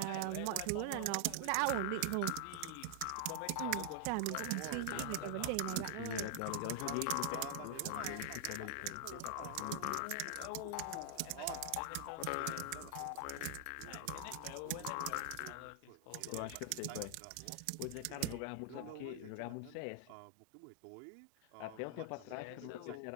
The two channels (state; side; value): different; both; correlation 0.00